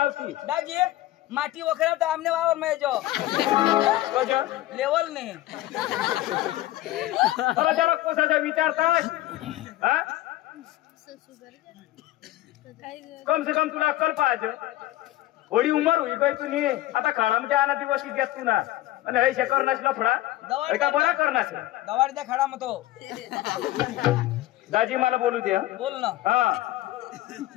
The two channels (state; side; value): quieter; right; 15.7 dB